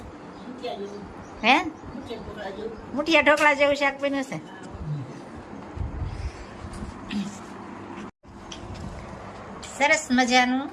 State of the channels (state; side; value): identical; both; correlation 1.00